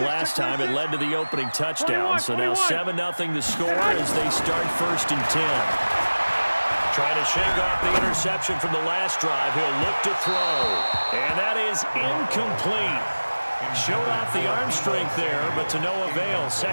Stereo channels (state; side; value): inverted; both; correlation -1.00